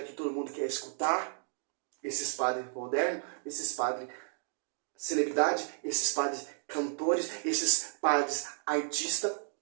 que todo mundo quer escutar, esses padres modernos, esses padres celebridade, esses padres cantores, esses padres artistas,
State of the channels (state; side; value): silent; left; 56 dB below the other